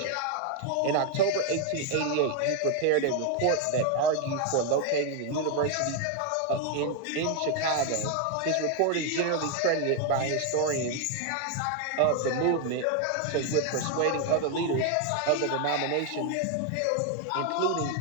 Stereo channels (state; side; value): different; both; correlation 0.01